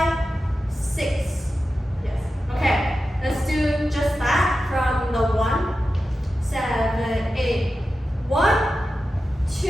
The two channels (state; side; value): normal; both; correlation 0.92